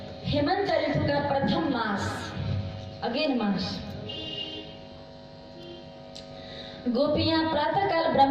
हेमंत ऋतु का प्रथम मास, अगेन मास, गोपियां प्रातःकाल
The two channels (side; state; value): both; identical; correlation 1.00